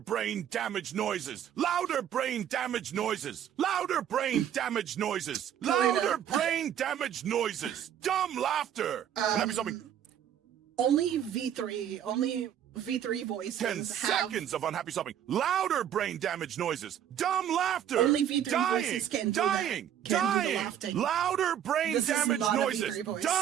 damage noises! Louder brain damage noises! Louder brain damage noises! Louder brain damage noises! Dumb laughter! Happy something. Only V3 voices 10 seconds of unhappy sobbing. Louder brain damage noises. Dumb laughter. Only V3 voices can do dying. Can do the laughing. Louder brain damage noises.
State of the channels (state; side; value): quieter; left; 9.9 dB